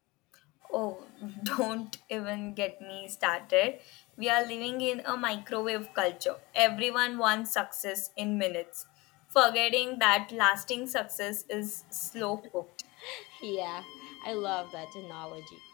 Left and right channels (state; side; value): quieter; right; 23.3 dB